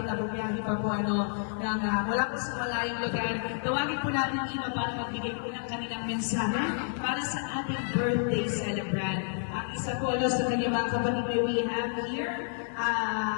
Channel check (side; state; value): right; silent; digital silence